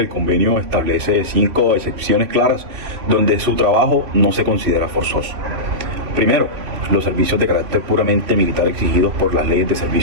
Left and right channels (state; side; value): late; left; 3.0 ms